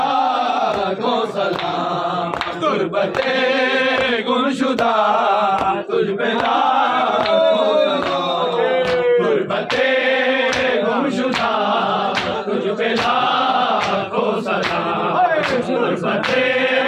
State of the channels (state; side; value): identical; both; correlation 1.00